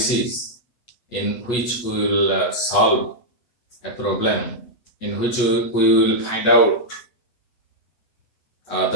in which we will solve a problem in which we will find out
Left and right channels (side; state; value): right; late; 8.2 ms